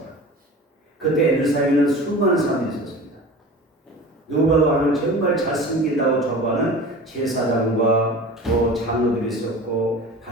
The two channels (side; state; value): both; normal; correlation 0.37